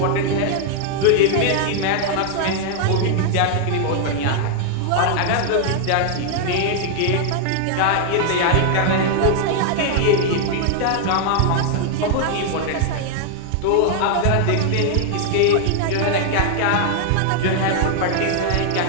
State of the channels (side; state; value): both; different; correlation 0.00